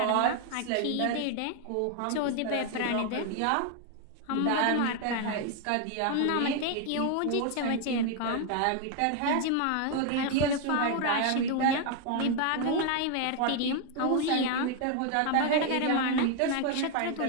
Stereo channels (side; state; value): both; different; correlation 0.01